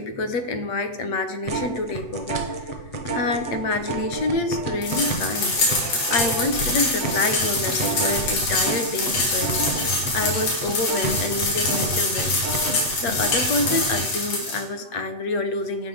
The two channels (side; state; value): right; late; 8.1 ms